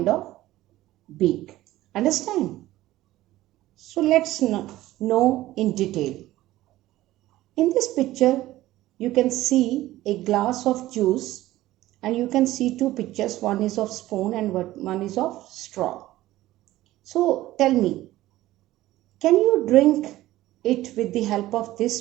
of beak. Understand? So let's know in detail. In this picture, you can see a glass of juice, and you can see two pictures. One is of spoon and one is of straw. So tell me, can you drink it with the help of this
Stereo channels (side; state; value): left; quieter; 15.9 dB